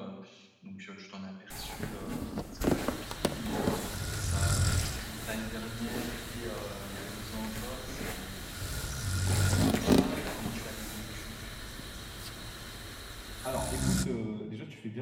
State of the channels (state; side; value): identical; both; correlation 1.00